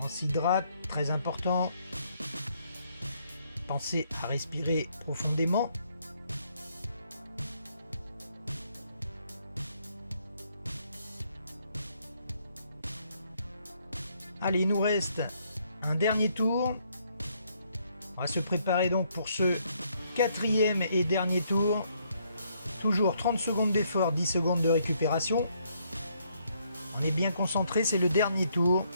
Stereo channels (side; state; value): both; inverted; correlation -0.71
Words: On s'hydrate, très important. Pensez à respirer profondément. Allez, il nous reste un dernier tour. On va se préparer donc pour ce 4e et dernier tour. Toujours 30 secondes d'effort, 10 secondes de récupération. On est bien concentré, c'est le dernier tour.